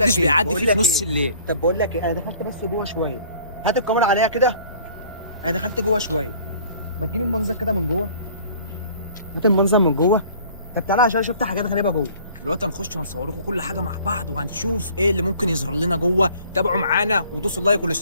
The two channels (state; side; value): inverted; both; correlation -0.52